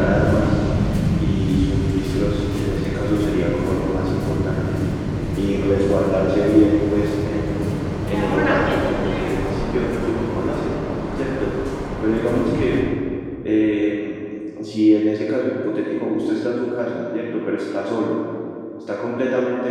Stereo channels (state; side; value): identical; both; correlation 1.00